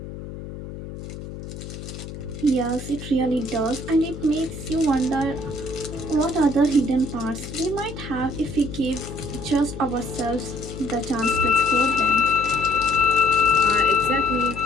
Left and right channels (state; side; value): noise; left; hum, 11 dB below the sound